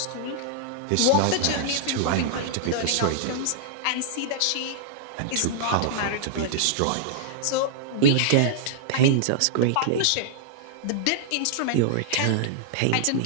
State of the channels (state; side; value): different; both; correlation -0.01